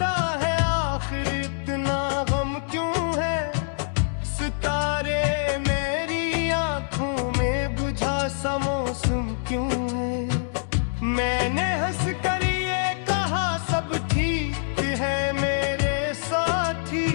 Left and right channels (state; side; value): silent; right; digital silence